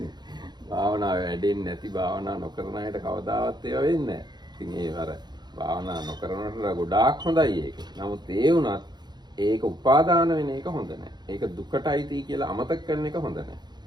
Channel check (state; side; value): late; left; 0.21 ms